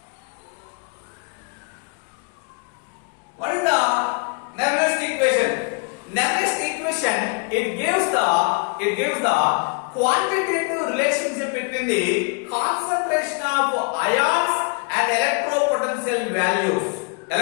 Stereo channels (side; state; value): right; quieter; 35.6 dB